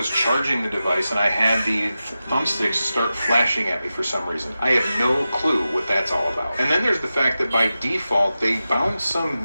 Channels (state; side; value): inverted; both; correlation -0.93